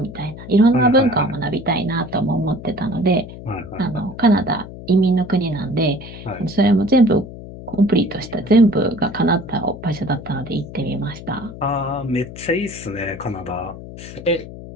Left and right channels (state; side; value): noise; left; hum, 13 dB below the sound